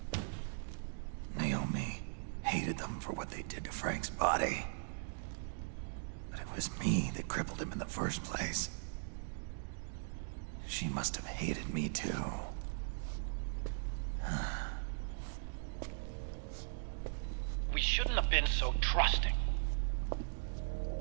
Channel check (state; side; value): silent; left; digital silence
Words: Naomi hated them for what they did to Frank's body. But it was me that crippled him in the first place. She must have hated me too. We shouldn't have been so trusting.